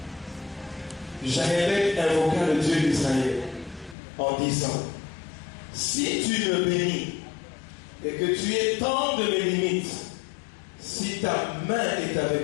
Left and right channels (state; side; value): drops out; right; at 4.0 s